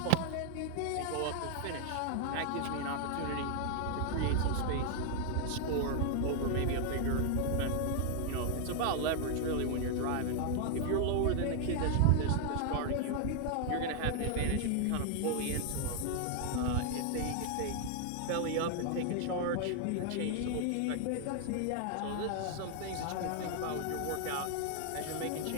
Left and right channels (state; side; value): different; both; correlation 0.00